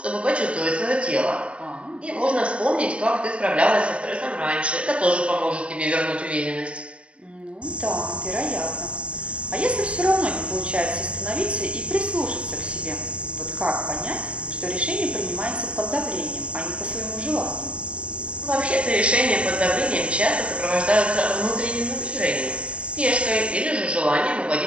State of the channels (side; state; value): left; late; 0.060 ms